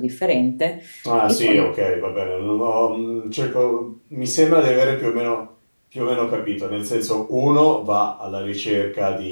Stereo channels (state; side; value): inverted; both; correlation -1.00